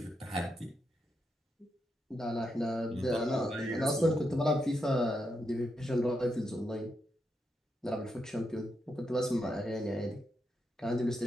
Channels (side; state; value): both; normal; correlation 0.83